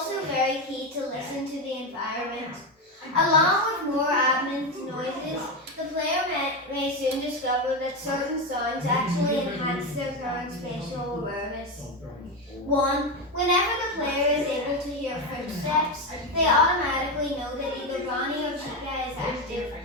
very key to listen to the environment. Along with more ambient noises, the player may soon discover that certain sounds actually enhance their current spatial awareness. 1. Whenever the player is able to hear footsteps, they automatically know that either Bonnie or Chica is active,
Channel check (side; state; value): both; normal; correlation 0.13